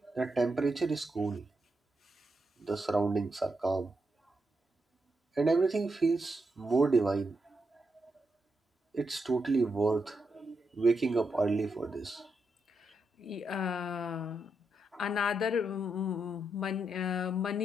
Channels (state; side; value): normal; both; correlation 0.83